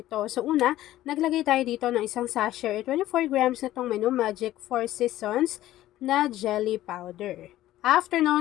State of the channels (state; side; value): quieter; right; 14.4 dB